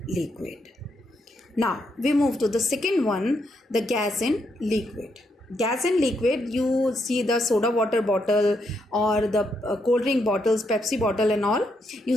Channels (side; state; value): both; normal; correlation 0.78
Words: liquid. Now we move to the second one, the gas in liquid. Gas in liquid, you see the soda water bottle or the cold drink bottles, Pepsi bottle and all, you